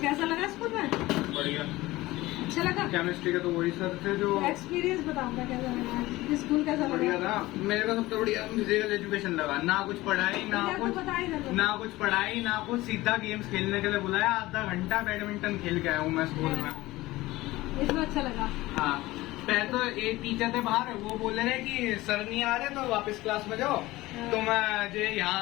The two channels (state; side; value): quieter; right; 18.6 dB